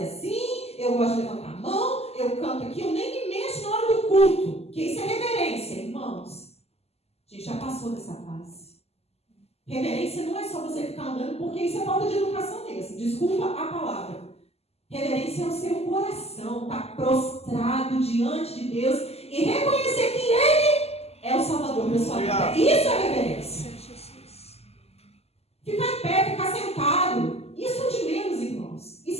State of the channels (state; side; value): late; right; 0.29 ms